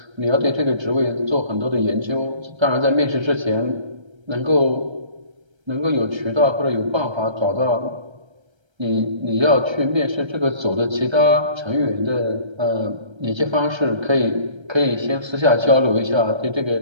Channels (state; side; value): late; left; 1.3 ms